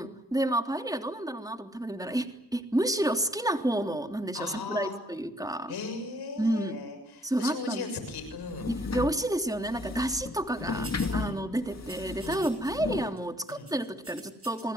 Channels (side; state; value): both; normal; correlation 0.65